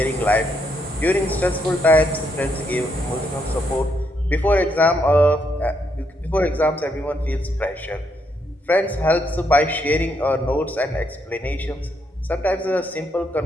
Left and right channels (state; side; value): normal; both; correlation 0.76